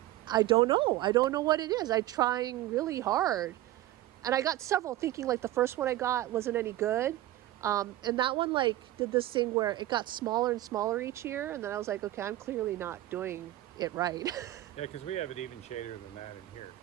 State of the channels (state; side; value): quieter; left; 15.1 dB